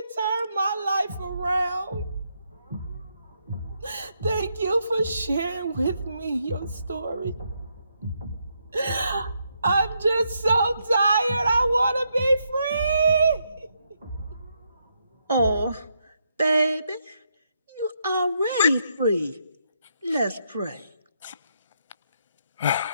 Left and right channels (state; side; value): inverted; both; correlation -0.78